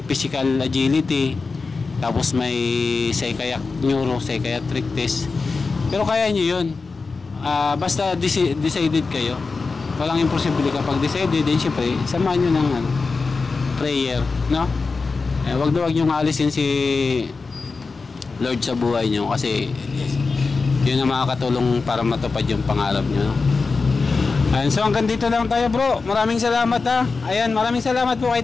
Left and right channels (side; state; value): right; quieter; 4.3 dB